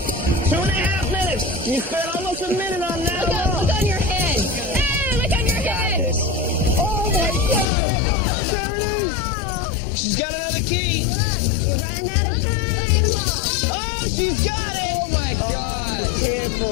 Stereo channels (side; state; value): right; drops out; at 7.7 s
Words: 2.5 minutes. You spent almost a minute on that. Look on your head. Hey, look on your head. Oh my God. There it is. She's got another key. You're running out of time. Oh, she's got it. Oh my God.